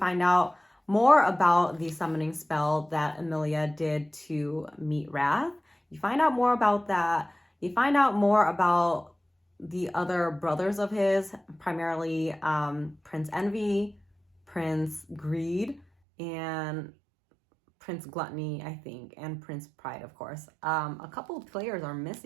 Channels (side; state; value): left; drops out; at 15.9 s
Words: out more about the summoning spell that Emilia did to meet Wrath. You find out more about that. You find out more about the other brothers of his, primarily Prince Envy, Prince Greed, and Prince Gluttony, I think, and Prince Pride, of course. A couple of players are